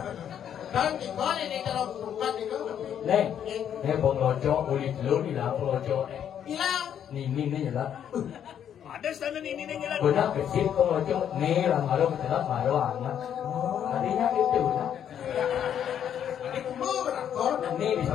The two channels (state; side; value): quieter; right; 9.3 dB